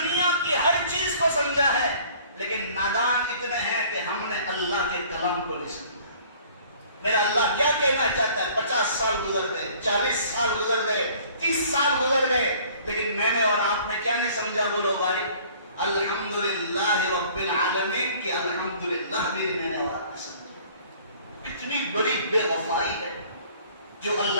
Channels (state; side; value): inverted; both; correlation -0.53